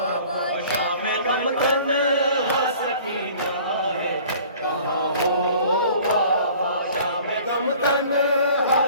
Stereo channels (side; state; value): both; inverted; correlation -0.49